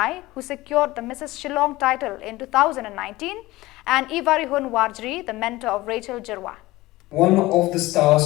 who secured the Mrs. Shillong title in 2019, and Ivarihun Warjri, the mentor of Rachel Jirwa. One of the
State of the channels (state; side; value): quieter; right; 18.9 dB